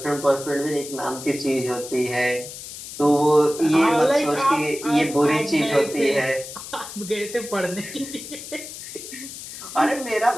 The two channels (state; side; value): noise; left; hiss, 11 dB below the sound